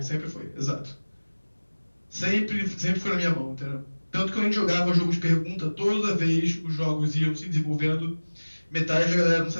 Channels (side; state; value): both; inverted; correlation -1.00